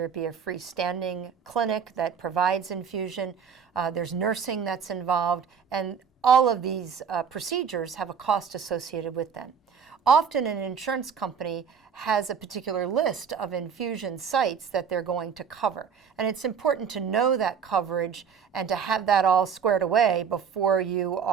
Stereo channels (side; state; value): left; quieter; 6.9 dB